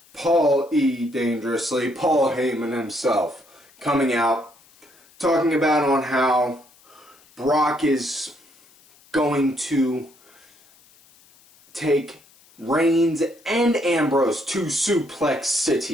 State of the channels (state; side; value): noise; left; hiss, 29 dB below the sound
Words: Paul E. Dangerously, Paul Heyman himself, coming out, talking about on how Brock is going to take Reigns and Ambrose to Suplex